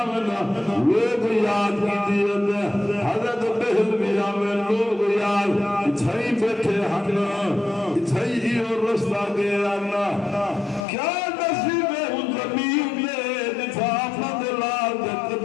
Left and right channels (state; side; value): drops out; right; at 10.9 s